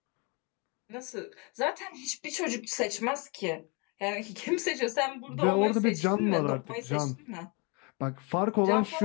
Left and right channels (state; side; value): quieter; right; 31.1 dB